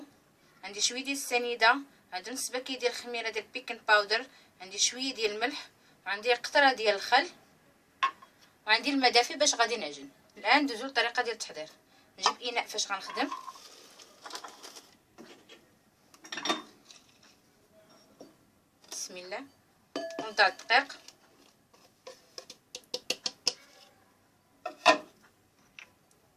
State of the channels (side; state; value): both; identical; correlation 1.00